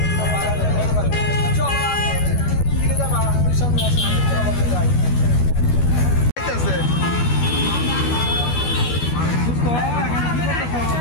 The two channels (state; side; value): late; right; 12 ms